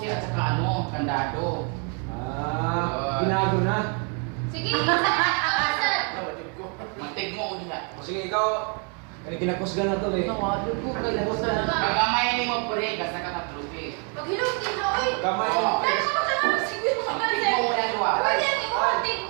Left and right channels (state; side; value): quieter; left; 37.4 dB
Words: at saka ano, kandado. Ah, binago na. Sige, saan? Mantig mo ulit. O sige, ikaw. Kinakusgan na to eh. Nawado ko kay Bosa na. Kagamay ni mo pure, kasi katatrupi. Pag hilong din na, oy. Kamay. Oo. Dahil ako sa mga siguro mga Mantig mo ulit duwa. Pwede ang imuhatig